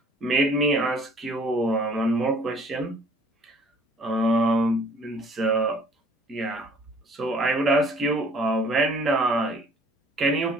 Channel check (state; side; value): normal; both; correlation 0.55